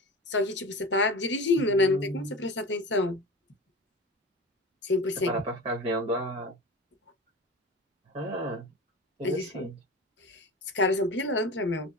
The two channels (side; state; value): both; normal; correlation 0.31